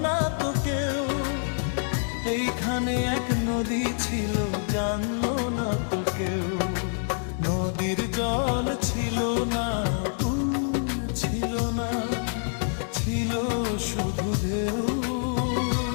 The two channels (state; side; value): silent; right; digital silence